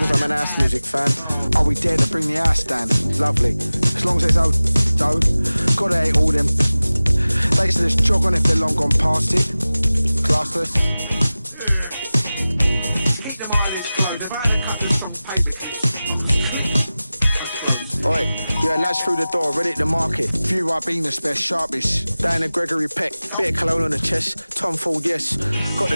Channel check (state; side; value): inverted; both; correlation -0.97